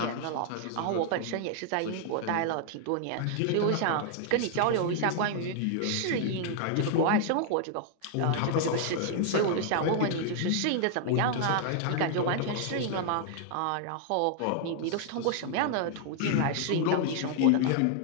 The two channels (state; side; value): different; both; correlation 0.00